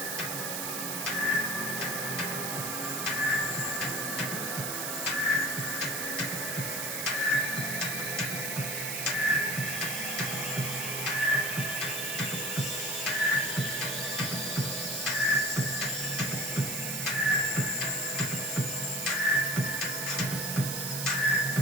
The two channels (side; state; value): right; noise; hiss, 2 dB below the sound